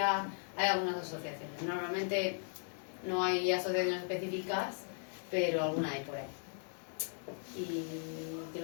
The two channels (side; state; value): right; silent; 53 dB below the other